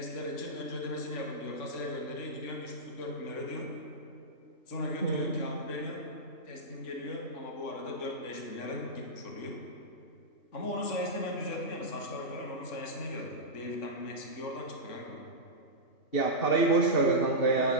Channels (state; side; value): late; right; 3.5 ms